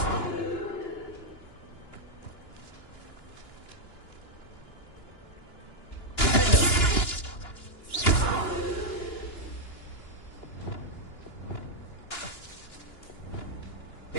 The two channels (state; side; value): late; right; 2.9 ms